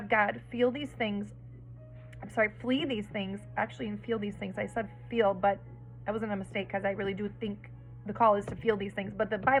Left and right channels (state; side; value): identical; both; correlation 1.00